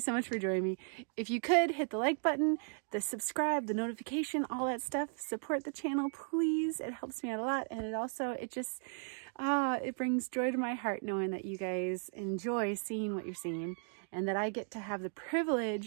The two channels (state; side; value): silent; left; 54 dB below the other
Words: much for joining me. If you could hit the like button, the subscribe, the notification, all that stuff, support the channel, please. It helps me out a lot. And it just it brings joy to my heart knowing that you guys enjoy seeing what you're seeing and that I get to have the